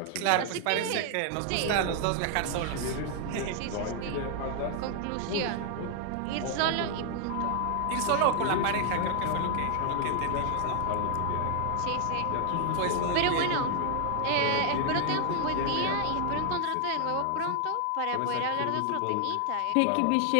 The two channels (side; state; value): both; different; correlation 0.00